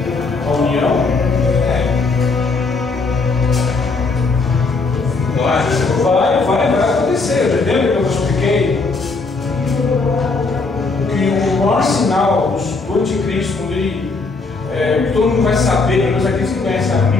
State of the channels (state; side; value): quieter; right; 3.9 dB